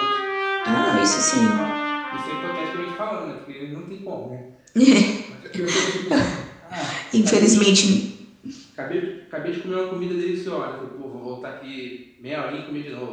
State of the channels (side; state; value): both; identical; correlation 1.00